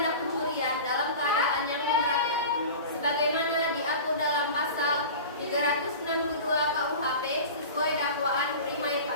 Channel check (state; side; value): inverted; both; correlation -0.34